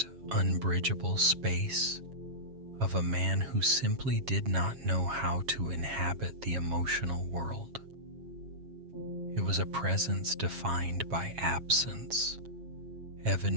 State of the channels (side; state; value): left; late; 7.3 ms